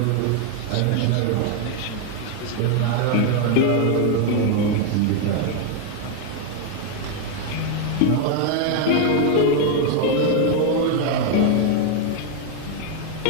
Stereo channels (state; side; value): different; both; correlation 0.01